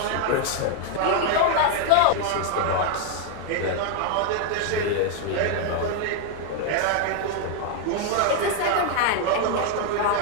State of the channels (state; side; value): different; both; correlation 0.01